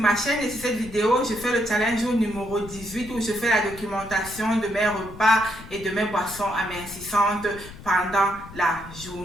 chaîne et sur cette vidéo, je fais le challenge numéro 18 où je fais la documentation de mes repas et de mes boissons amincissantes pendant la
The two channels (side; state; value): left; noise; rumble, 16 dB below the sound